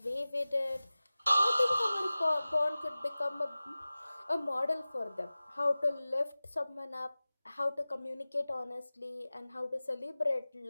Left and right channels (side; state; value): both; inverted; correlation -0.97